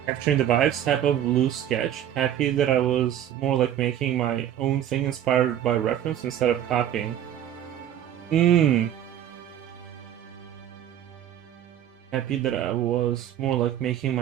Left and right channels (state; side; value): quieter; left; 10.9 dB